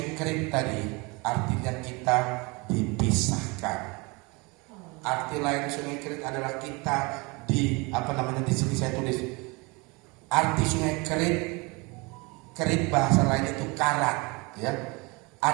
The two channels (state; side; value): quieter; left; 27.3 dB